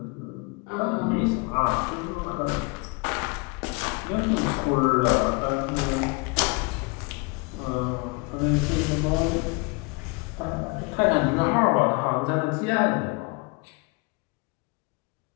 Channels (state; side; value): quieter; right; 29.4 dB